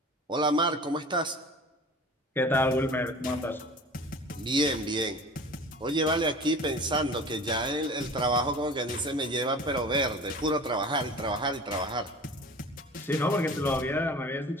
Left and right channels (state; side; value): normal; both; correlation 0.40